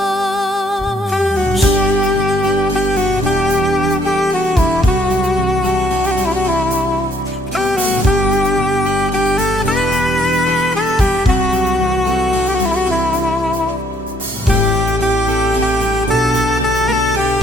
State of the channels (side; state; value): both; normal; correlation 0.67